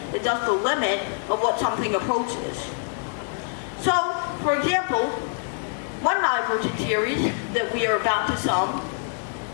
as just the limit of what something approaches. So, for example, one divergent series that we are about to sum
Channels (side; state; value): right; silent; 62 dB below the other